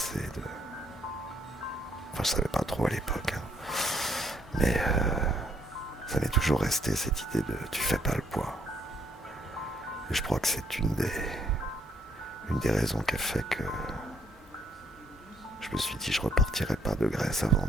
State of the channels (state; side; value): normal; both; correlation 0.68